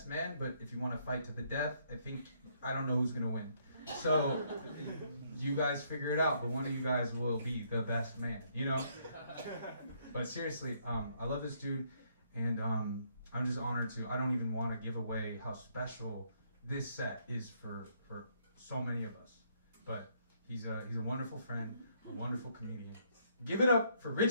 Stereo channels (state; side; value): inverted; both; correlation -0.70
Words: men, but if you want to fight to the death, I don't know who's gonna win. So you guys figure it out, but one of you guys will be the best man, you know? But seriously, I love this dude, and I'm just honored to. I don't even want to give away how special this set is for so many of us. But he's a wonderful friend, a wonderful comedian. Give it up for